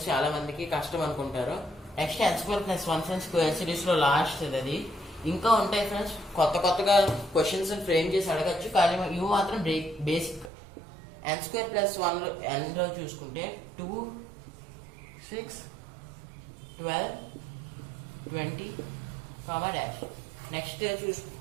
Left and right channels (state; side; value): drops out; left; at 10.5 s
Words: చాలా మందికి కష్టం అనుకుంటారు. Next n square plus 1 friends, square series లో లాస్ట్ అది. ఇంకా ఉంటాయి ఫ్రెండ్స్, కొత్తగా క్వశ్చన్స్ ఫ్రేమ్ చేసి అడగచ్చు, కానీ ఇవి మాత్రం బేసిక్. n స్క్వేర్ ప్లస్ 1 లో n లో చూసుకుంటే 2 6 12 20 dash. Next